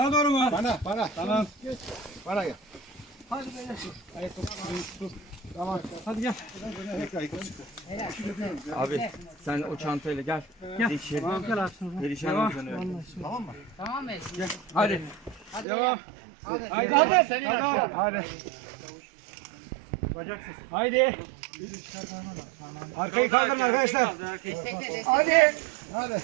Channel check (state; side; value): drops out; left; at 15.7 s